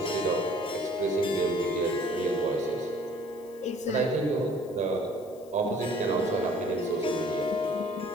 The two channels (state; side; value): noise; left; hiss, 26 dB below the sound